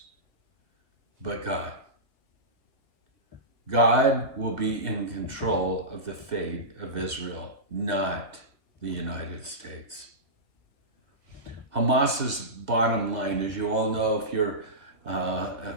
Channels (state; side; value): late; left; 2.3 ms